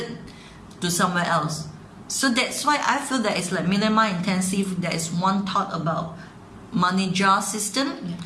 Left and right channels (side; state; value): both; identical; correlation 1.00